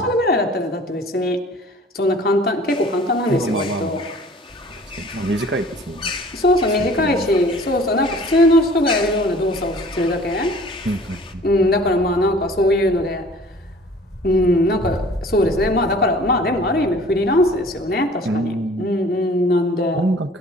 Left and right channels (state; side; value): normal; both; correlation 0.50